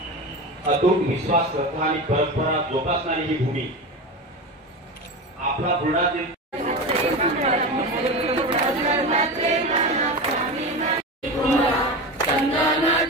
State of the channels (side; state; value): both; normal; correlation 0.24